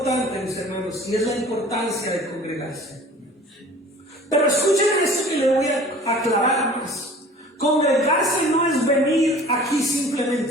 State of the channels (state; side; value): normal; both; correlation 0.46